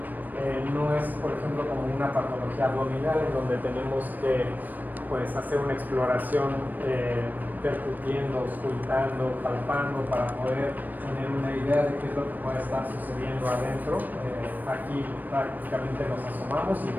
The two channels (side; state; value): left; late; 0.087 ms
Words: no es, por ejemplo, como una patología abdominal en donde tenemos que pues hacer una exploración percutiendo, auscultando, palpando para poder tener una idea de qué es lo que puede estar sucediendo adentro. Aquí prácticamente nos asomamos y